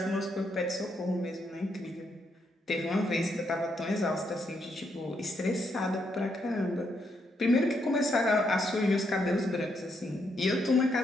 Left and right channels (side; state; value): both; normal; correlation 0.77